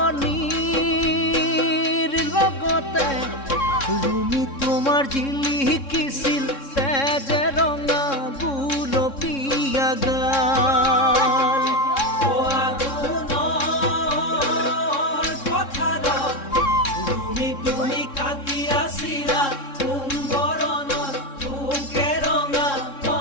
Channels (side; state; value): right; late; 3.6 ms